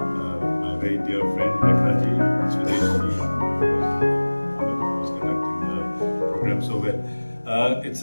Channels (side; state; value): both; inverted; correlation -1.00